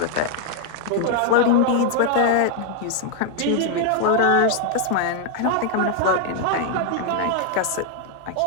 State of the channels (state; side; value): different; both; correlation 0.00